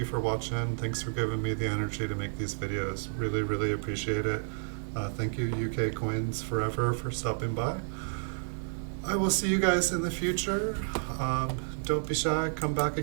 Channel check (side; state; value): left; silent; 57 dB below the other